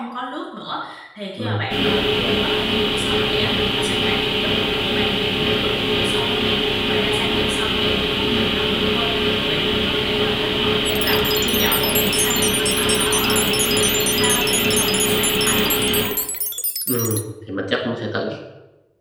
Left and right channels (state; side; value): identical; both; correlation 1.00